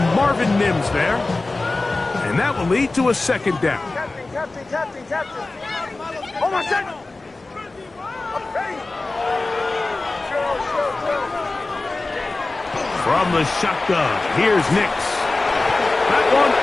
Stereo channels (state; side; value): quieter; right; 3.3 dB